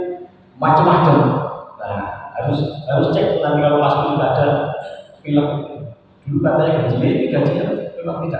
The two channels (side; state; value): both; identical; correlation 1.00